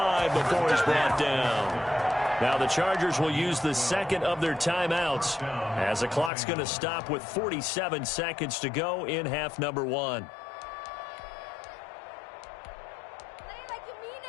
before he's brought down. Now the Chargers will use the second of their timeouts as the clock's going to stop with 47 seconds to go in half number 1.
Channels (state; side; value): drops out; right; at 6.3 s